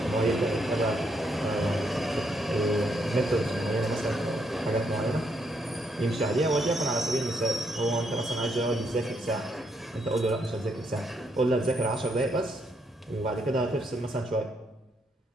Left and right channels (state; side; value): normal; both; correlation 0.76